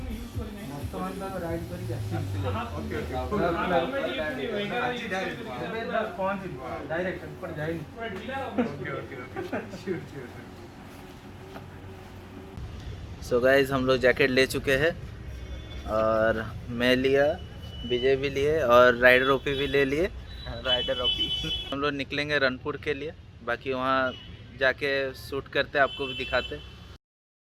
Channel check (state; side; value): identical; both; correlation 1.00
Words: सो गाइज हम लोग जैकेट ले चुके हैं और मैं लिया, विजय भी लिए और राइडर ओपी भी ले लिए। Rider OP. हम लोग निकलेंगे रनपुर के लिए, बाकी वहाँ जाके शूट करते आपको भी दिखाते।